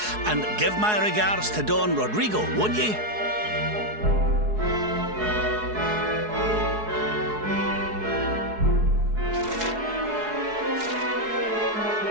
And give my regards to Don Rodrigo, won't ye?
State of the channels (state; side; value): late; left; 4.7 ms